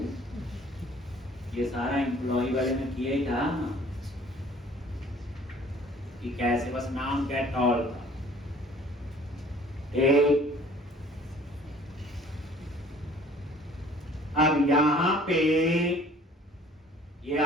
ये सारा एम्प्लॉय वाले ने किया ही था कि कैसे, बस नाम गेट ऑल था। एक अब यहां पे ये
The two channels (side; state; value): both; normal; correlation 0.52